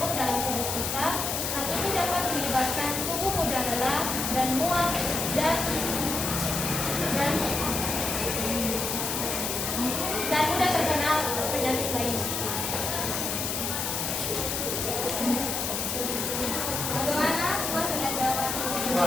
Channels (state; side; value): noise; left; hiss, 1 dB below the sound